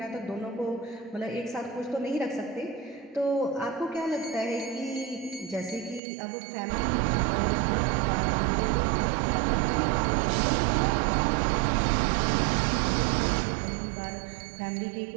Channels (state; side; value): drops out; left; at 6.0 s